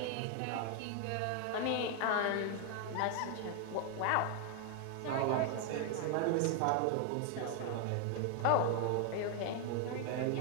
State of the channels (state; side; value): different; both; correlation 0.00